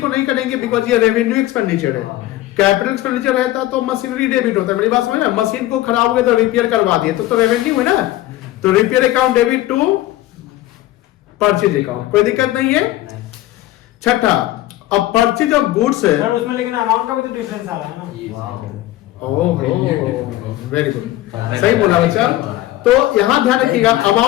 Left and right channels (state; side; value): quieter; right; 15.7 dB